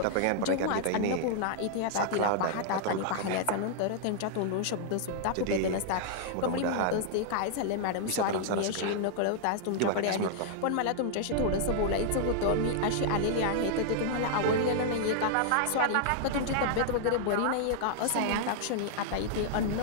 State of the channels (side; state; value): both; different; correlation -0.01